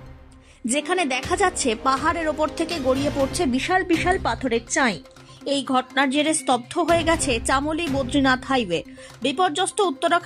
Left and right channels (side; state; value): both; identical; correlation 1.00